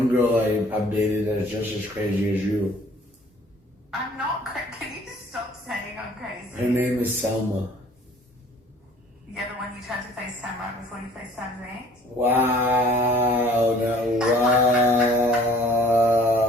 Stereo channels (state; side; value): normal; both; correlation 0.54